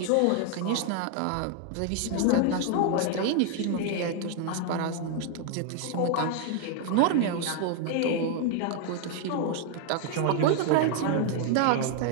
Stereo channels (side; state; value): both; different; correlation 0.00